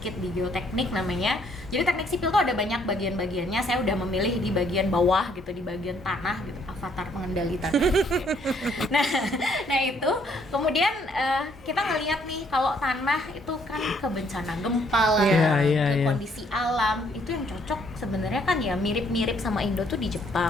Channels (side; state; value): both; normal; correlation 0.67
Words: di geoteknik namanya. Jadi teknik sipil tuh ada banyak bagian-bagiannya. Saya udah memilih di bagian bawah gitu, di bagian tanah gitu, avatar pengendali tanah. nah itu kemudian kita ngelihat nih kalau tanah itu kan ke bencana gempa lah, ke kondisi alam itu yang cocok sebenarnya kan ya mirip-mirip sama Indo tuh di